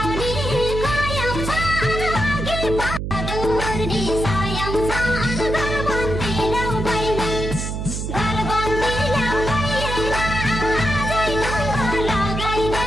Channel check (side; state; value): right; noise; hum, 4 dB below the sound